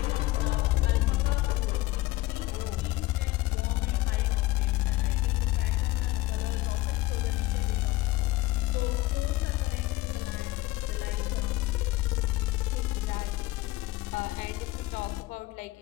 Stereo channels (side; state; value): right; quieter; 18.4 dB